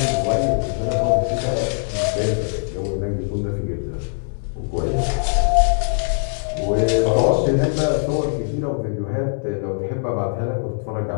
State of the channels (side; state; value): right; silent; 65 dB below the other